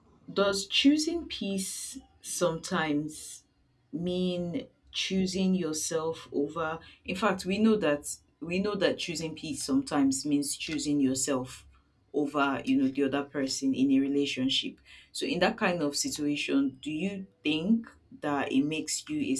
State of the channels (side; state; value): both; identical; correlation 1.00